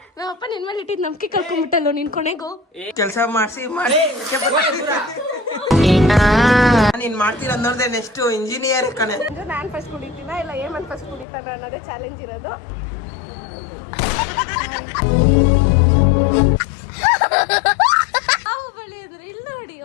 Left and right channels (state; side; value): drops out; right; at 11.2 s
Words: ನಮ್ಮಪ್ಪ ನಿನ್ ಮೇಲೆ ಇಟ್ಟಿದ್ ನಂಬಿಕೆ ಕಳ್ಕೊಂಡ್ಬಿಟ್ಟಲ್ಲೋ ನೀನ್ ಕೊನೆಗೂ. ಕೆಲಸ ಮಾಡಿಸಿ ನೀನ್ ಮಾಡ್ತೀರ ಅನ್ನೋದೇ ನೆಕ್ಸ್ಟ್ ಇಂಜಿನಿಯರ್ ಕಣೆ. ನಾನ್ ಫಸ್ಟ್ ಕುಡಿತೀನ ಇಲ್ಲ ಏಮನ್ ಫಸ್ಟ್ ಕುಡಿತಾನ ಅನ್ನೋದೇ ಚಾಲೆಂಜ್ ಇರೋದು. ಬಳಿ ಇದ್ರು ಇಲ್ಲ ನೋಡಿ.